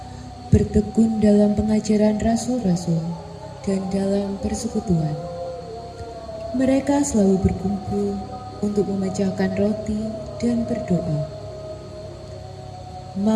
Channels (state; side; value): identical; both; correlation 1.00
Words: bertekun dalam pengajaran rasul-rasul dan dalam persekutuan. Mereka selalu berkumpul untuk memecahkan roti dan berdoa.